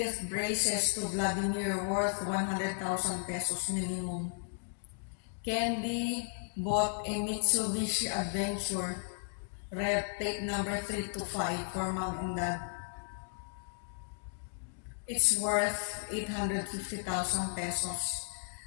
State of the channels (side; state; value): right; silent; digital silence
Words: braces to Vladimir worth 100,000 pesos minimum. Candy bought a Mitsubishi Adventure red plate number 325 for Mom and Dad. It's worth 850,000 pesos.